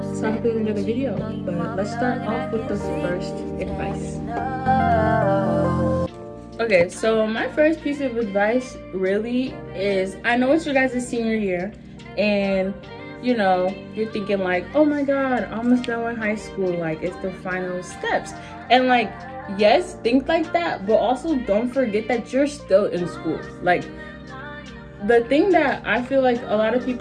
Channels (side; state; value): both; identical; correlation 1.00